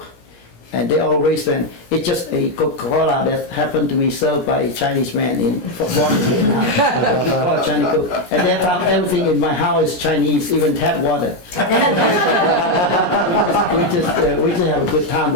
And they all raised them. It's just a Coca-Cola that happened to be served by a Chinese man in Vietnam. Called Chinese Coke. At that time, everything in my house is Chinese, even tap water. We just have a good time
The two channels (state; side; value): late; right; 17 ms